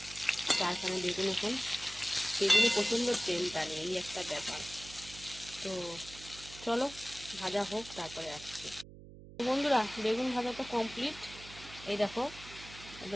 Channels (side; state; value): right; noise; hum, 16 dB below the sound